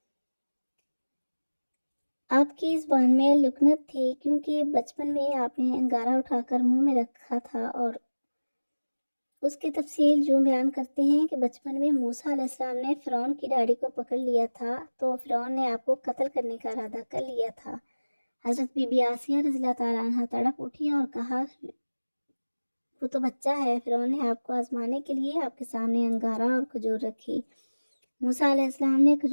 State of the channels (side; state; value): both; inverted; correlation -1.00